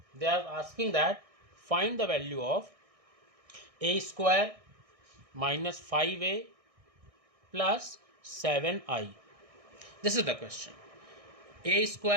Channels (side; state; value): left; late; 1.6 ms